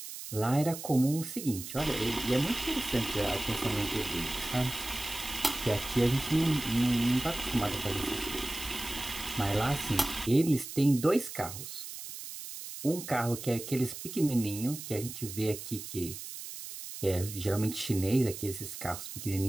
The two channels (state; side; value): noise; right; hiss, 10 dB below the sound